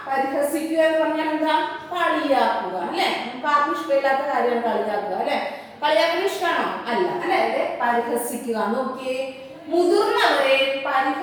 പരിഹസിക്കുക എന്ന് പറഞ്ഞാൽ എന്താ? കളിയാക്കുക അല്ലെ. നമുക്ക് ആർക്കും ഇഷ്ടമില്ലാത്ത കാര്യമാണ് കളിയാക്കുക അല്ലെ. കളിയാക്കുന്ന ഇഷ്ടമാണോ? അല്ല അല്ലെ. പരിഹസിക്കുക. നോക്കിയേ, മുതിർന്നവരെ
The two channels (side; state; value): both; identical; correlation 1.00